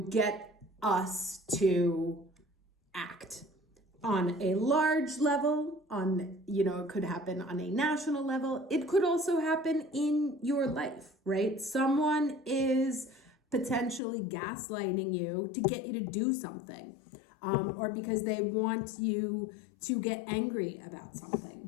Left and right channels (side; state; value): right; drops out; at 14.0 s